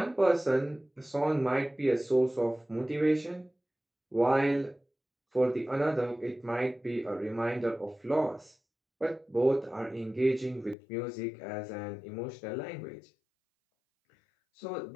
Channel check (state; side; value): drops out; right; at 10.8 s